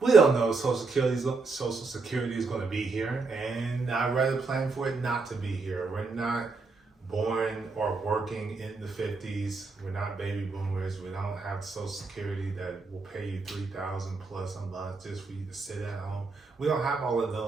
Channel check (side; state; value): left; quieter; 4.1 dB